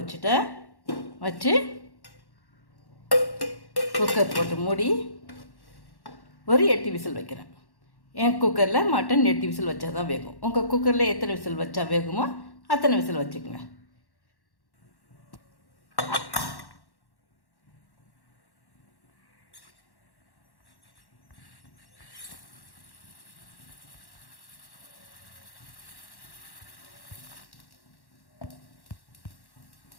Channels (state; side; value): late; right; 1.1 ms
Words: வச்சு குக்கர் போட்டு மூடி ஒரு 8 விசில் வைக்கிறேன். என் குக்கரில் மட்டன் 8 விசில் வச்சா தான் வேகும். உங்கள் குக்கரில் எத்தனை விசில் வச்சா வேகுமோ அத்தனை விசில் வச்சுக்கோங்க.